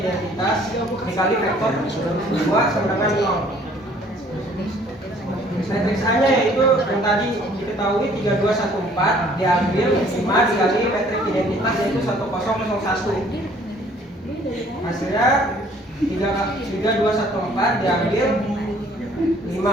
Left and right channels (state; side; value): normal; both; correlation 0.58